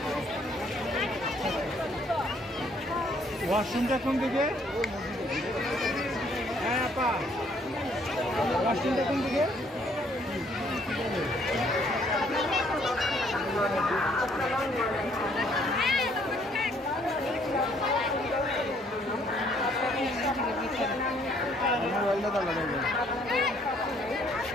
ওয়াশরুমটা কোন দিকে? হ্যাঁ আপা, ওয়াশরুমটা কোন দিকে?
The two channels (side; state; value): both; normal; correlation 0.65